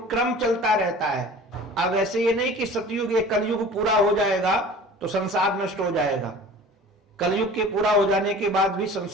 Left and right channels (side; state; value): both; normal; correlation 0.42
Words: क्रम चलता रहता है। अब ऐसे ये नहीं कि सतयुग ये कलयुग पूरा हो जाएगा तो संसार नष्ट हो जाएगा। कलयुग के पूरा हो जाने के बाद भी